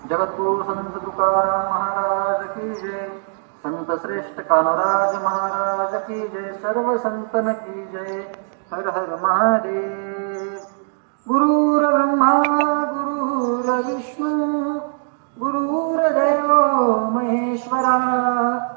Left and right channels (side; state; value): left; silent; digital silence